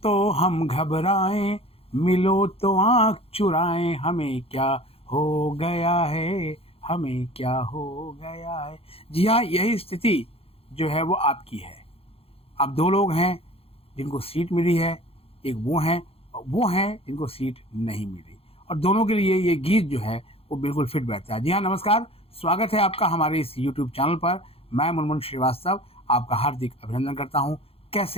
हम घबराएं, मिलो तो आँख चुराएं, हमें क्या हो गया है, हमें क्या हो गया है। जी हाँ, यही स्थिति जो है वो आपकी है। अब दो लोग हैं जिनको सीट मिली है, एक वो हैं जिनको सीट नहीं मिली, और दोनों के लिए ये गीत जो है वो बिल्कुल फिट बैठता है। जी हाँ, नमस्कार, स्वागत है आपका हमारे इस यूट्यूब चैनल पर। मैं मुनमुन श्रीवास्तव आपका हार्दिक अभिनंदन करता हूँ।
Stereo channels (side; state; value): right; late; 0.28 ms